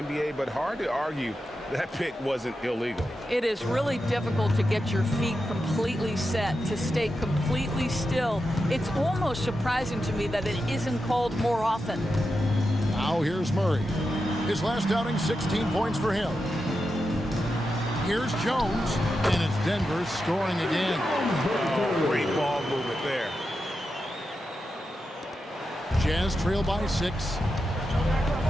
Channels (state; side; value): normal; both; correlation 0.89